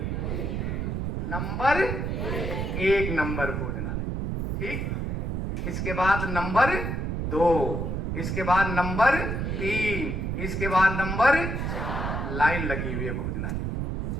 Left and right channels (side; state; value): right; noise; rumble, 1 dB below the sound